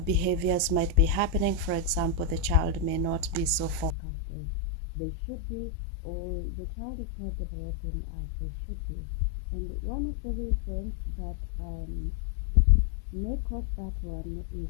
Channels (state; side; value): drops out; right; at 4.0 s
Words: behaviors might be happening. For example, the child may not be so focused as they should be, or the child is not developing as they should be. And one of the reasons that may cause that one